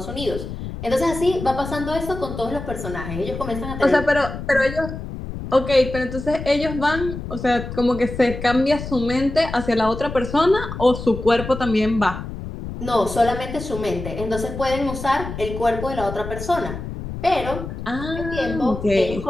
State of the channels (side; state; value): left; noise; rumble, 8 dB below the sound